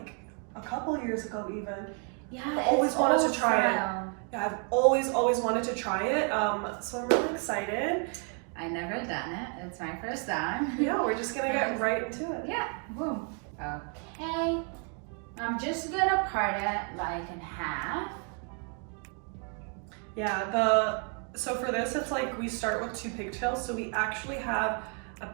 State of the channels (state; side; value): quieter; left; 39.7 dB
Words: a couple years ago even. Yeah, I've always wanted to try it. Yeah, I've always wanted to try it. So I'm really excited. I never done it. It's my first time. Yeah, we're just gonna get right into it. Yeah, boom. Okay. I'm just gonna part it like in half. Yeah, so for this, it's like we start with two pigtails. So we actually have a